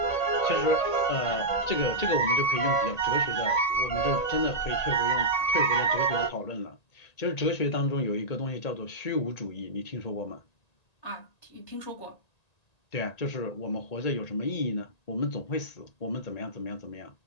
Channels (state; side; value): late; right; 1.9 ms